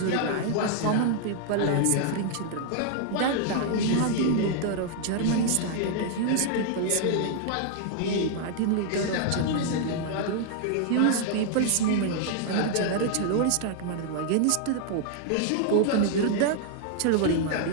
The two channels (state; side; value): different; both; correlation 0.00